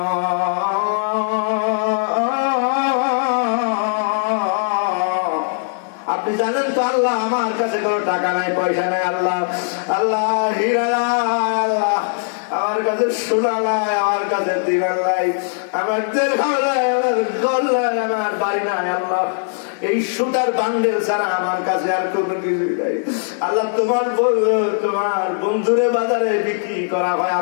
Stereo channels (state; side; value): silent; right; digital silence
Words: আপনি জানেন তো আল্লাহ, আমার কাছে কোনো টাকা নাই, পয়সা নাই আল্লাহ, আল্লাহ হীরা নাই আল্লাহ, আমার কাছে সোনা নাই, আমার কাছে দিনার নাই, আমার দিরহাম নাই, আমার ঘর নাই, আমার বাড়ি নাই আল্লাহ। এই সুতার বান্ডেল ছাড়া আমার কাছে আর কোনো কিছুই নাই আল্লাহ। তোমার বন্ধুরে বাজারে বিক্রি করা হয়